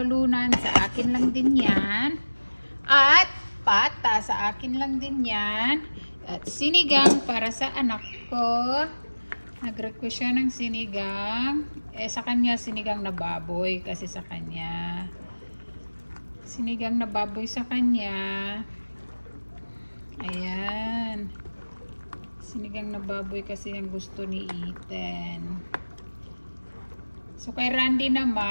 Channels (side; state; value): both; inverted; correlation -1.00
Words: Sa akin lang din yan. At pata. Sa akin lang din yan. At sinigang para sa anak ko. Nag-request siya ng sinigang. Sa kanya, sinigang na baboy. Kasi sa kanya. Sinigang na baboy sa kanya. Ayan. Sinigang na baboy kasi ang gusto ni Ethan. So, kay Randy